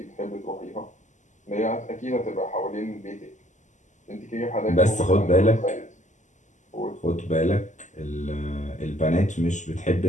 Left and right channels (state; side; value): late; right; 0.35 ms